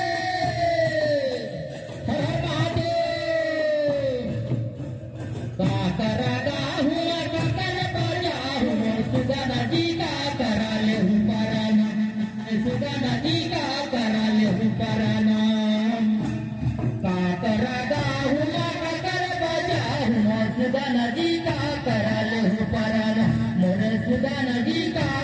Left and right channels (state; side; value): identical; both; correlation 1.00